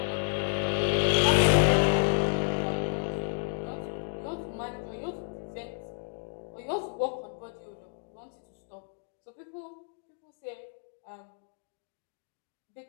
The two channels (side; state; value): right; silent; digital silence